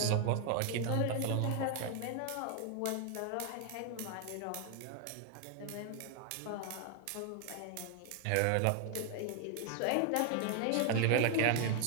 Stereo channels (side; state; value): both; different; correlation 0.00